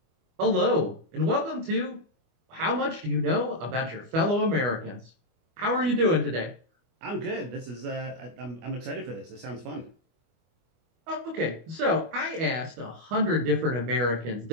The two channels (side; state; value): left; late; 24 ms